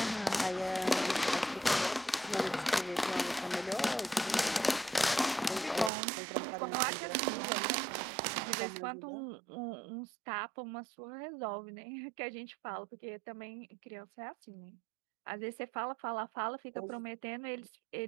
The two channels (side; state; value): left; drops out; at 5.9 s